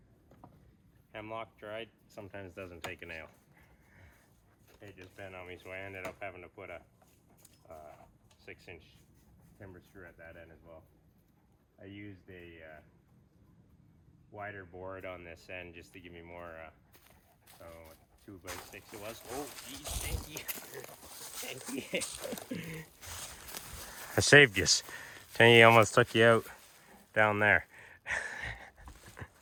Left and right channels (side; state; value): both; identical; correlation 1.00